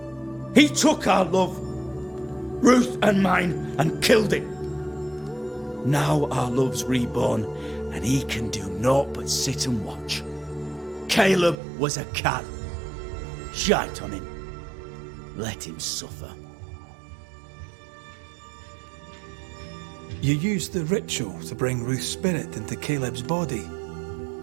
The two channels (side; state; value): left; drops out; at 11.6 s